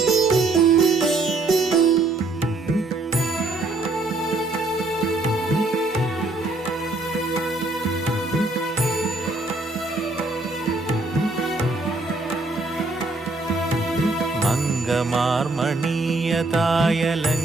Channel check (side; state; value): left; quieter; 3.0 dB